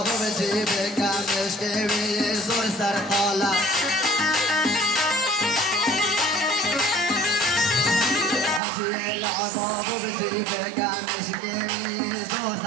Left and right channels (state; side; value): drops out; left; at 8.6 s